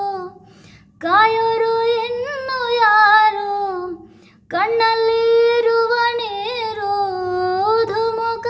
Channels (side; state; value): both; identical; correlation 1.00